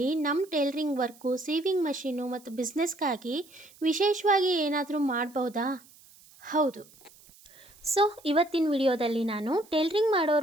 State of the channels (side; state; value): right; noise; hiss, 25 dB below the sound